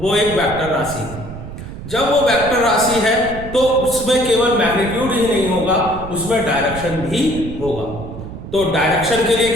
एक वेक्टर राशि है। जब वो वेक्टर राशि है तो उसमें केवल मैग्नीट्यूड ही नहीं होगा, उसमें डायरेक्शन भी होगा। तो डायरेक्शन के लिए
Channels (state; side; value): noise; right; rumble, 11 dB below the sound